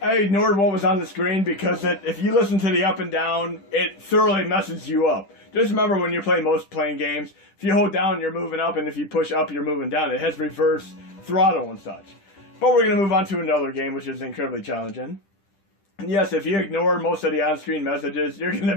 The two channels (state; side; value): late; right; 10 ms